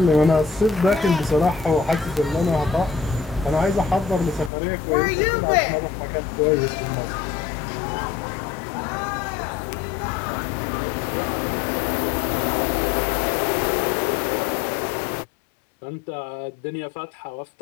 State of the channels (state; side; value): drops out; right; at 4.5 s